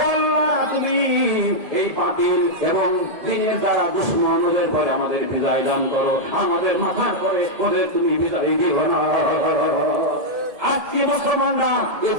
তুমি এই বাতিল এবং দিনের দ্বারা দুশ্মন ওদের পরে আমাদের বিজয় দান করো, আমাদের মাথার পরে ওদের তুমি বিজয় দিও না। আজকে মুসলমানরা এ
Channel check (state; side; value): late; left; 1.7 ms